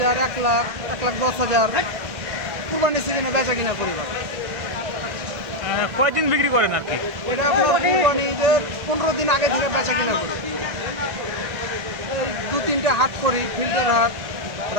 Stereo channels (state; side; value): late; left; 1.9 ms